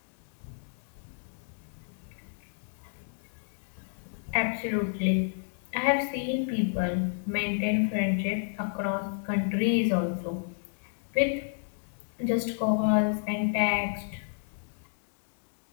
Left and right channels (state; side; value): silent; right; digital silence